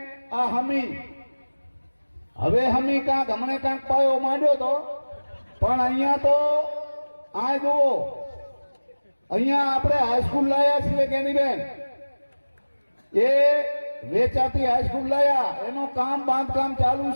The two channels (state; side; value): inverted; both; correlation -1.00